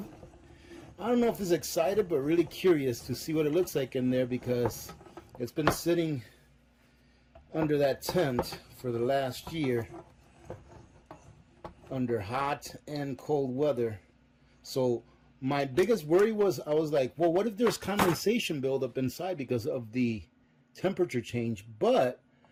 I don't know if it's excited, but really curious to see what it looks like in there, because it's been sitting under that tent for the last year under hot and cold weather. So my biggest worry was, I was like, well, what if there's condensation buildup inside because of the temperature change? But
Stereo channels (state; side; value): identical; both; correlation 1.00